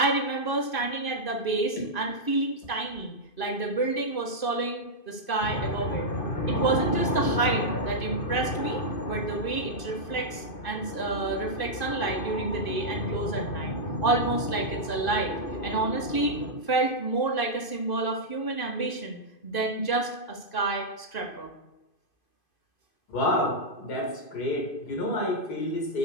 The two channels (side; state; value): right; late; 2.5 ms